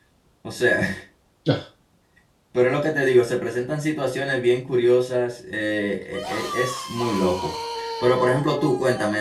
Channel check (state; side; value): identical; both; correlation 1.00